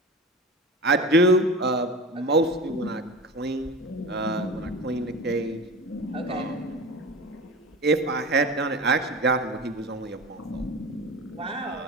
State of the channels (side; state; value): both; normal; correlation 0.31